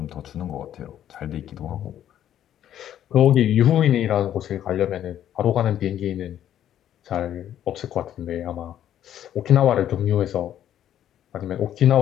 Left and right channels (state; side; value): quieter; right; 11.0 dB